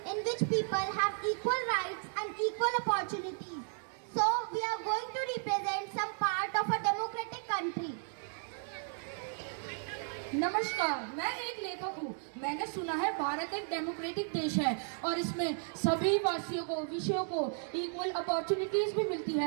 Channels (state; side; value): silent; left; 55 dB below the other